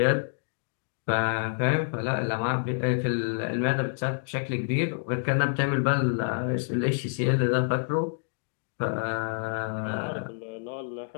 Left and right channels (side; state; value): right; silent; digital silence